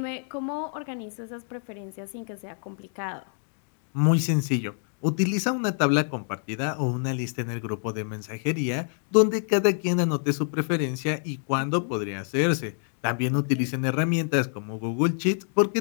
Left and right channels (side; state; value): right; silent; 60 dB below the other